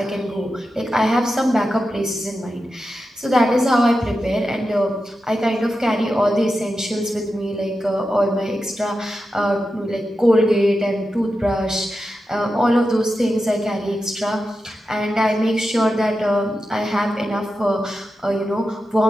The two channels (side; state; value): both; normal; correlation 0.90